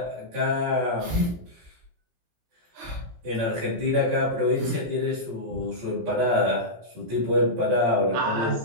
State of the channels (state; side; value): late; left; 17 ms